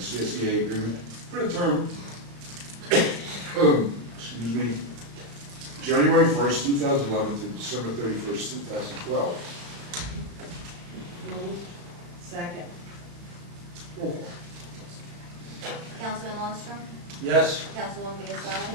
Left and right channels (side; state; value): left; late; 35 ms